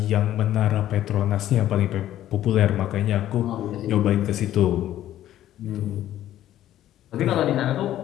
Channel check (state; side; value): quieter; right; 12.7 dB